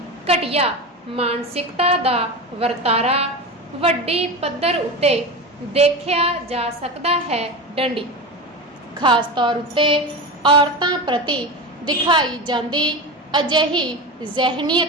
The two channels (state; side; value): normal; both; correlation 0.24